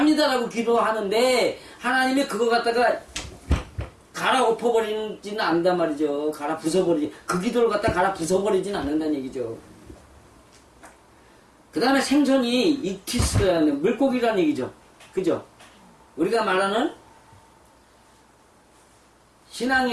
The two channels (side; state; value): both; identical; correlation 1.00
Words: 기도하는데 하나님이 그거 갖다가 갈아엎어버리지는 않는단 말이죠. 갈아 부숴버리지. 그 기도를 갖다 갈아 부숴버리지는 않는다는 얘기죠. 그 다음에 생선이 익티스라는 물고기라는 얘기죠. 그죠? 우리가 말하는